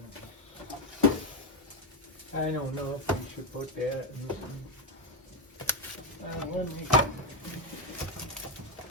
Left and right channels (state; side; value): normal; both; correlation 0.07